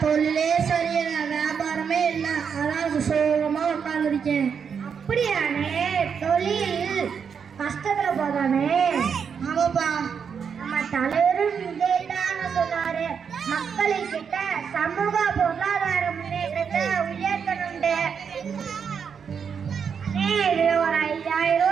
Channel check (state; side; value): quieter; left; 6.7 dB